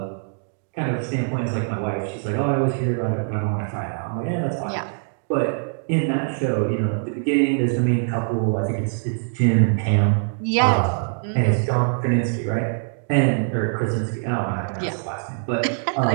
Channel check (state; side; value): silent; left; 63 dB below the other